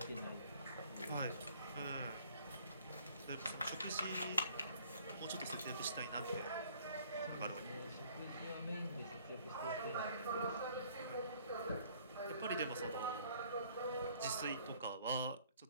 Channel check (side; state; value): both; inverted; correlation -0.58